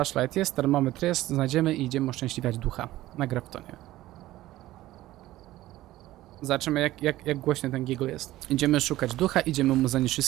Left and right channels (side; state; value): left; quieter; 15.9 dB